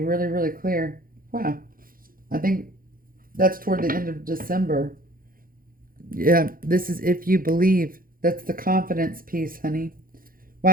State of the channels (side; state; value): left; late; 0.41 ms